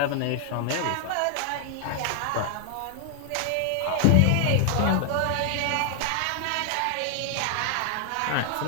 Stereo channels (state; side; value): different; both; correlation 0.00